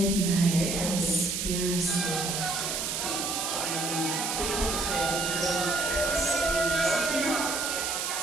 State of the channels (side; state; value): right; noise; hiss, 1 dB below the sound